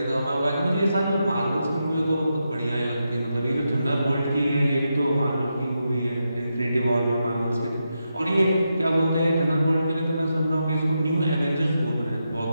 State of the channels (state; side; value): inverted; both; correlation -0.86